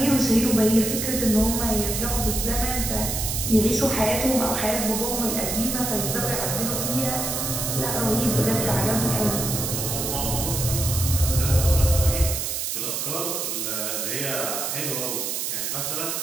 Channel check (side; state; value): right; noise; hiss, 2 dB below the sound